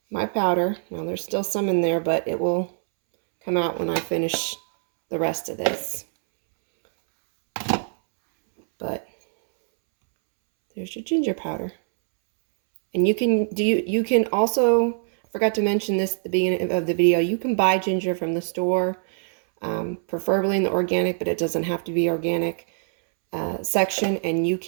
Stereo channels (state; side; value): silent; left; 63 dB below the other